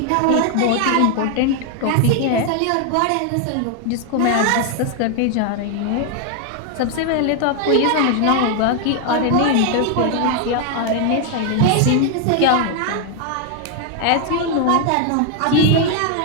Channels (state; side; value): different; both; correlation 0.00